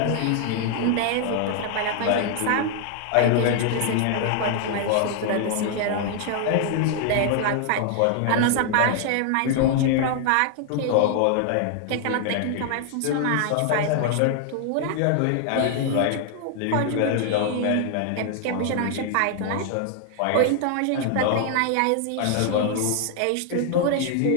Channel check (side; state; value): both; different; correlation 0.00